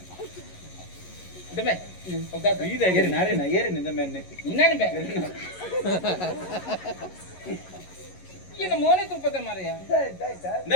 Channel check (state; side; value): late; right; 11 ms